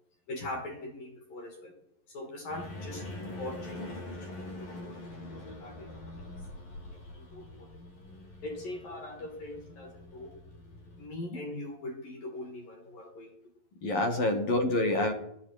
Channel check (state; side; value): late; right; 11 ms